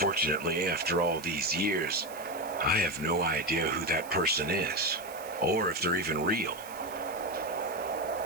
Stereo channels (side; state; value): right; noise; hiss, 17 dB below the sound